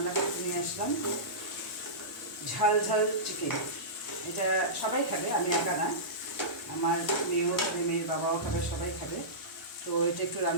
করতে নিয়ে আসলাম ঝাল ঝাল চিকেন। এটা সবাই খাবে, আমি একা না, আমার মেয়েও খাবে, মেয়ের বাবাও খাবে, সবাই খাবে। তো এটা একটু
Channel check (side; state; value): both; normal; correlation -0.18